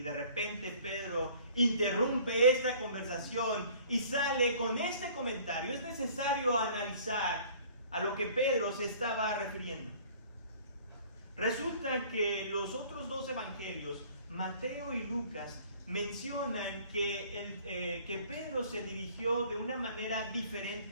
de repente Pedro interrumpe esta conversación y sale con este comentario. Es necesario analizar a lo que Pedro se estaba refiriendo. Resulta que los otros 2 evangelios, Mateo y Lucas, mencionan que Pedro se dirigió de una manera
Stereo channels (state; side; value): inverted; both; correlation -0.52